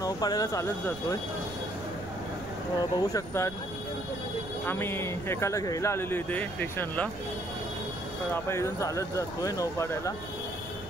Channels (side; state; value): right; noise; rumble, 16 dB below the sound